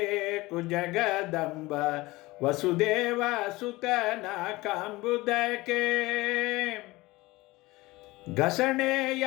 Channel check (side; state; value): right; quieter; 20.6 dB